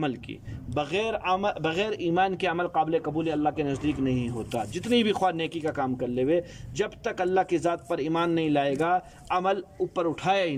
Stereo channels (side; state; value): both; identical; correlation 1.00